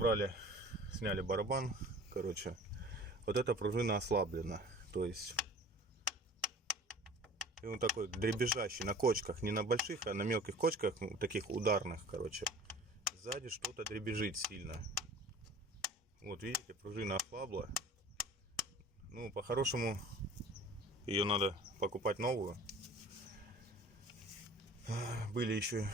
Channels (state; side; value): normal; both; correlation 0.45